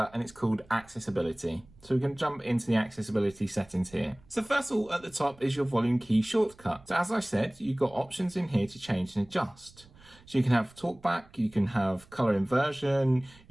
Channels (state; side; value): noise; right; rumble, 26 dB below the sound